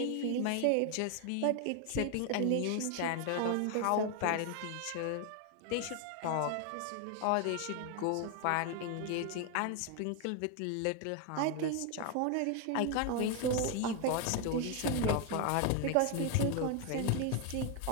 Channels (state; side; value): different; both; correlation 0.01